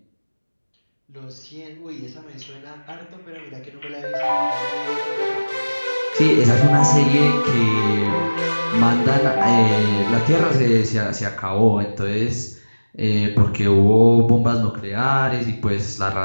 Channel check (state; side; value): inverted; both; correlation -1.00